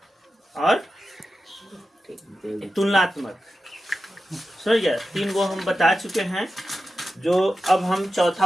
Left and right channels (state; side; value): normal; both; correlation 0.92